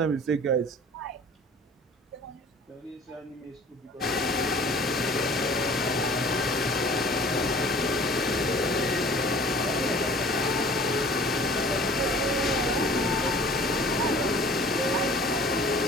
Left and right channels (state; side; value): normal; both; correlation 0.48